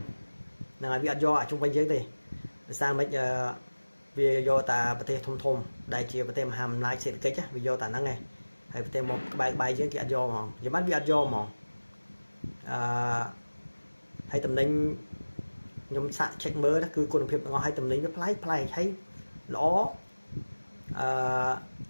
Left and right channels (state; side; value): inverted; both; correlation -1.00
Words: là bị do ở trung quanh dưới đây sao mấy vì do ta bờ tây thông thông đại chia bờ tây hàm lại sẽ cái chứ vì do ta nắng này hay bờ tây một bài bài dưới kia do mà giờ mắt bị do mà hay tầm ninh nhom sạ check mơ đó cứ con phiệp ngon hay tầm ninh với play thấy ló